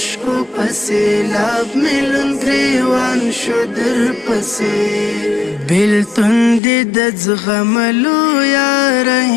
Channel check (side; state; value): right; drops out; at 6.6 s